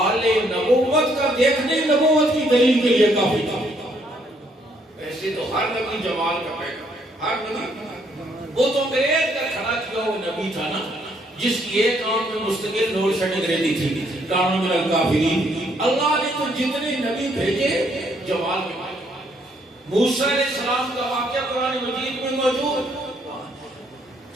نبوت کا دیکھنے نبوت کی دلیل کے لیے کافی تھا۔ ایسے تو ہر نبی جمال کا پیغام، ہر نبی، وہ تو انگریز کا کھڑا کیا وہ نبی تھا نا، جس کی ایک آنکھ میں مستقل نور شٹک رہتی تھی، کانوں میں الکافرین۔ اللہ نے تو جتنے نبی بھیجے جمال میں پائے۔ موسیٰ علیہ السلام کا واقعہ قرآن مجید میں موجود،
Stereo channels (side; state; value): both; normal; correlation 0.69